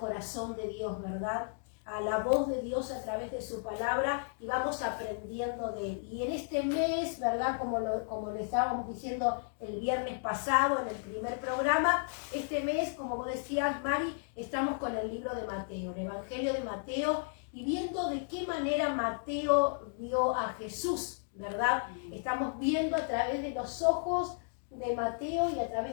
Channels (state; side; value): silent; right; digital silence